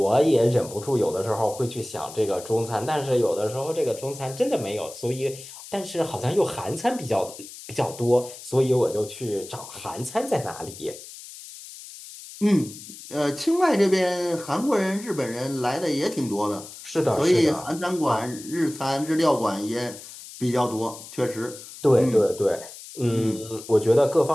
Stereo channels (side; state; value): left; noise; hiss, 15 dB below the sound